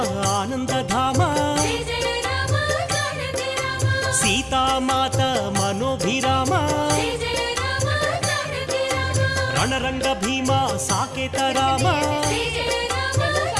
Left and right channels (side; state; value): both; identical; correlation 1.00